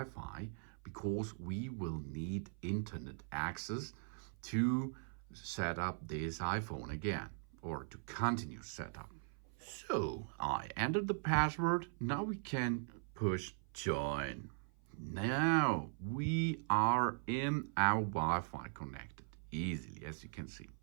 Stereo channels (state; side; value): silent; left; 51 dB below the other